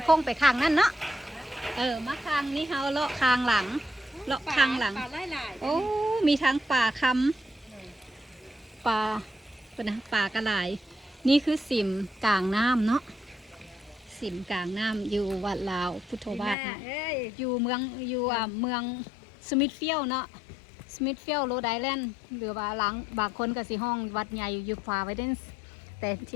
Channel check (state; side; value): drops out; right; at 16.6 s